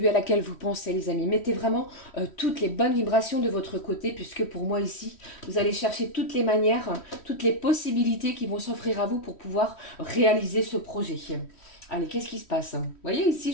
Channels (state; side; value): late; right; 3.1 ms